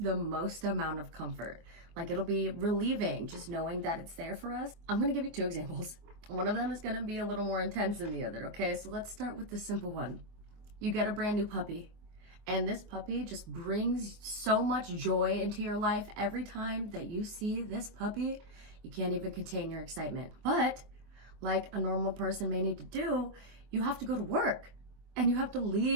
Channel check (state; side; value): late; left; 24 ms